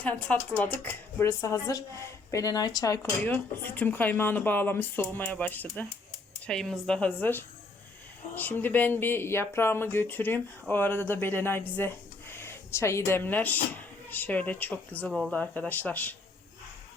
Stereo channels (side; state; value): right; quieter; 3.4 dB